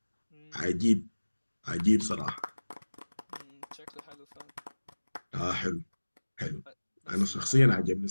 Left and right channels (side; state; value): both; inverted; correlation -1.00